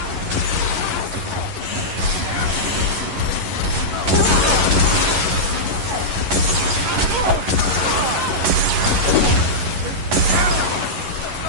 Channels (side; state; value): left; late; 11 ms